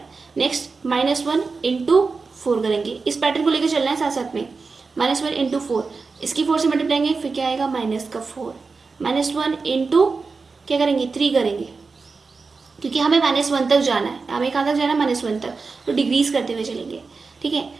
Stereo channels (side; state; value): left; quieter; 4.4 dB